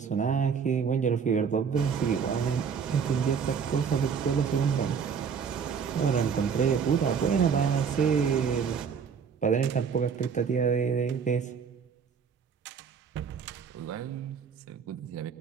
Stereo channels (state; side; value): quieter; left; 6.5 dB